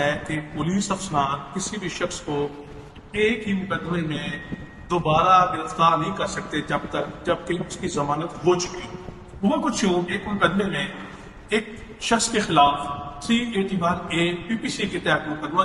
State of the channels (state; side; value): identical; both; correlation 1.00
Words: کہ پولیس افسران کسی بھی شخص کو ایک ہی مقدمے میں دوبارہ گرفتار نہیں کر سکتے جبکہ اس کی ضمانت ہو چکی ہو۔ وہ کچھ یوں ایک مقدمے میں ایک شخص کے خلاف 381A PPC کے تحت مقدمہ